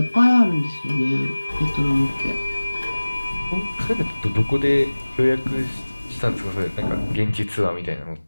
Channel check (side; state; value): both; inverted; correlation -1.00